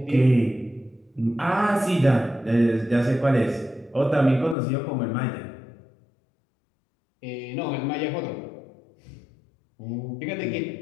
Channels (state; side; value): drops out; right; at 4.5 s